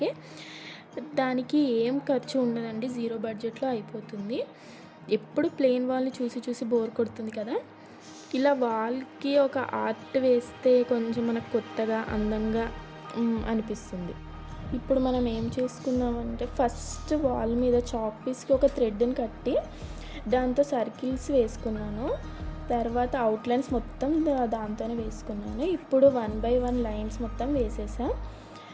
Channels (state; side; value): identical; both; correlation 1.00